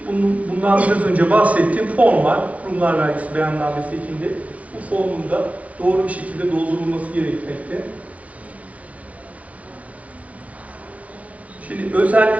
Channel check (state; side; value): late; left; 0.067 ms